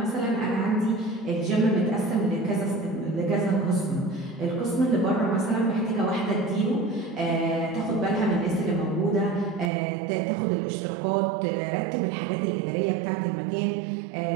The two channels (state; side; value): drops out; left; at 9.7 s